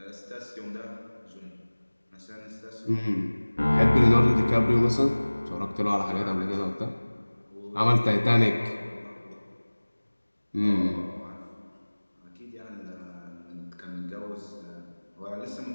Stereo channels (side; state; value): both; inverted; correlation -1.00